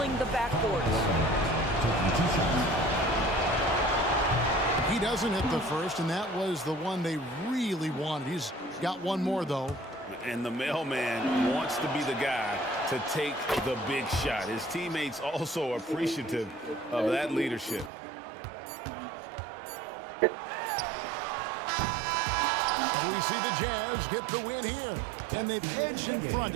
the backboards. He doesn't hit the first, and that was the one they really wanted. He's got one more, though. And the mailman wants to be the guy to take the big shot. His teammates also appreciative of that leadership. We see the Jazz get the win here. And they've edged in front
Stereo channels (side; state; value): left; drops out; at 17.9 s